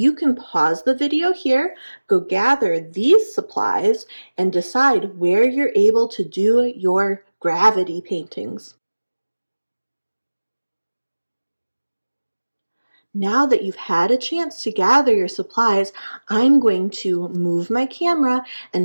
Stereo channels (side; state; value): both; inverted; correlation -1.00